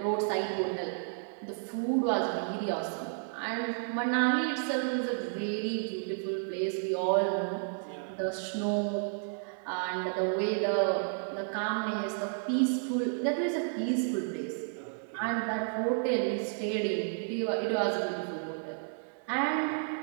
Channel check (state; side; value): silent; left; digital silence